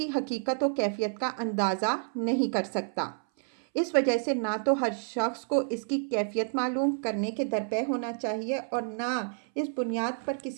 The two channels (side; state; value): left; silent; 58 dB below the other